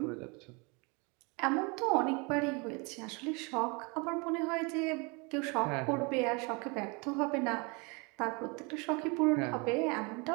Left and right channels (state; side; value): quieter; left; 30.2 dB